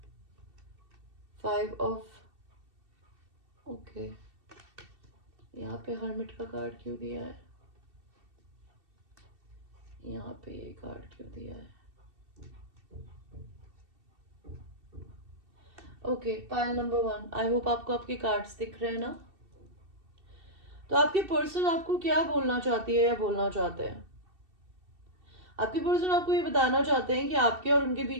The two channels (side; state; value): left; late; 2.7 ms